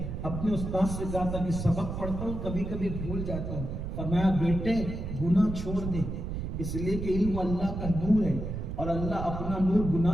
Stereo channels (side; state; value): right; noise; rumble, 5 dB below the sound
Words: اپنے استاد سے کہا تھا کہ سبق پڑھتا ہوں کبھی کبھی بھول جاتا ہوں، فرمایا بیٹے گناہ چھوڑ دے، اس لیے کہ علم اللہ کا نور ہے اور اللہ اپنا نور